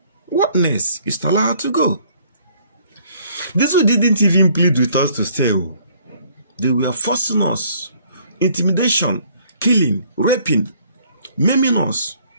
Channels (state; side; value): inverted; both; correlation -0.61